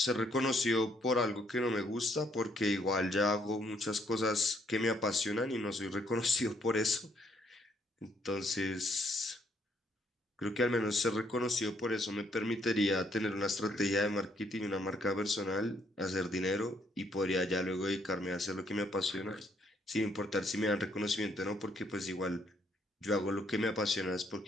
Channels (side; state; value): both; normal; correlation 0.70